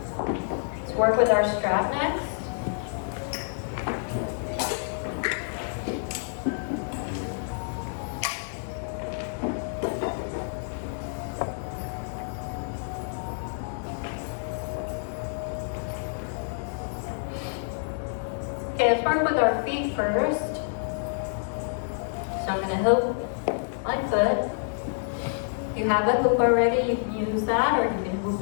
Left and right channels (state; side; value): silent; right; digital silence